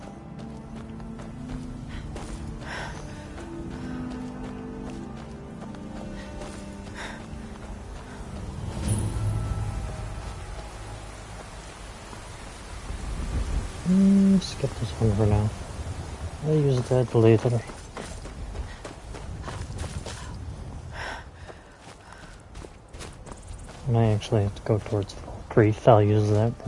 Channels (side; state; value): both; identical; correlation 1.00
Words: Skip this one for now. I'll use that later. And I actually have to go towards Grief. I'll use that